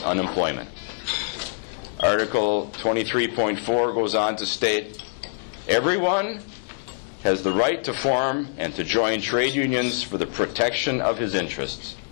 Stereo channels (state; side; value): silent; right; digital silence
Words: unemployment. Article 23.4 goes on to state, everyone has the right to form and to join trade unions for the protection of his interests.